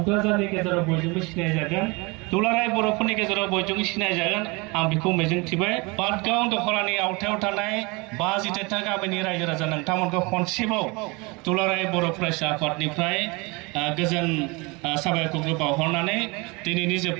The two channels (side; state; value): left; quieter; 27.0 dB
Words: गेजेराव बयजोंबो सिनायजागोन, दुलाराय बर'फोरनि गेजेराव बयजोंबो सिनायजागोन। आं बेखौ मिजिंथिबाय। पाटगाव दख'रानि आवथायाव थानाय 52टा गामिनि रायजो राजा नोंथांमोनखौ खनसेबाव दुलाराय बर' फरायसा आफादनिफ्राय गोजोन साबायखरखौ बावहरनानै दिनैनि